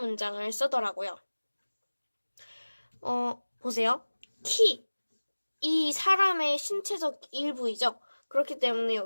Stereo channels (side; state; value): both; inverted; correlation -1.00